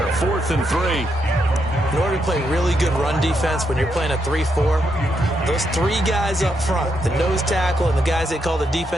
4th and 3. In order to play really good run defense when you're playing a 3-4, those 3 guys up front, the nose tackle and the guys they call the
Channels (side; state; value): both; normal; correlation 0.80